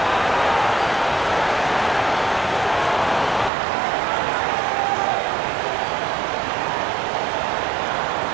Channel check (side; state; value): left; drops out; at 3.5 s